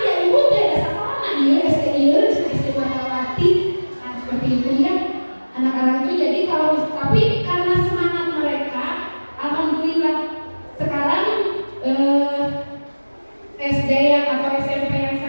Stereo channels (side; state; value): both; inverted; correlation -1.00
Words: ya ibu teh ada sekolah nah iya SD Margawati. Nah seperti itu ya. Anak-anak itu jadi kalau tapi karena semangat mereka, alhamdulillah sekarang